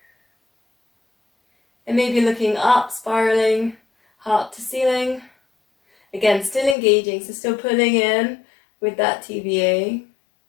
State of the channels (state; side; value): drops out; right; at 6.8 s